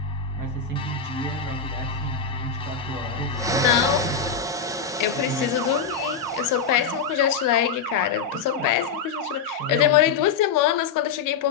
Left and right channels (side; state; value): right; quieter; 5.9 dB